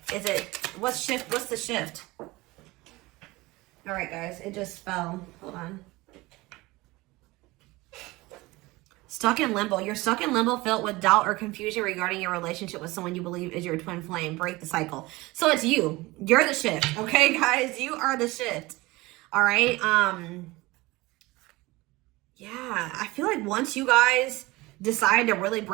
What's the shift? All right, guys. It just fell. Hold on. Stuck in limbo. You're stuck in limbo, filled with doubt or confusion regarding your relationship with someone you believe is your twin flame. Break the cycle. So it's you. You're the shift. Okay, guys? You are the shift. All right? Yeah, I feel like once you guys decide to really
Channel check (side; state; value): left; quieter; 21.1 dB